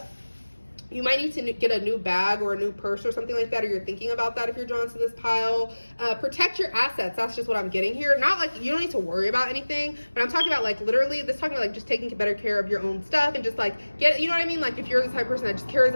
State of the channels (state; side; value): inverted; both; correlation -1.00